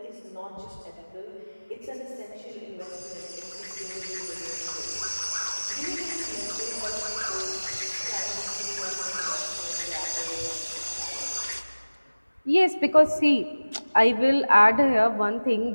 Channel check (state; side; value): inverted; both; correlation -1.00